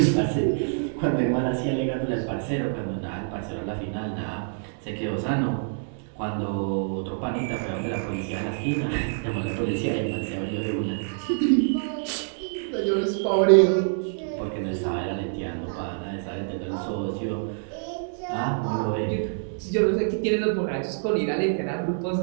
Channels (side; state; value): left; silent; digital silence